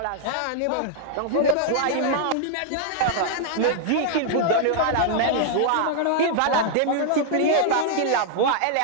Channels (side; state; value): both; different; correlation -0.01